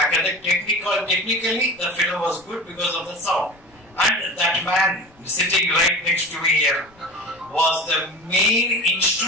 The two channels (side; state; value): left; noise; rumble, 30 dB below the sound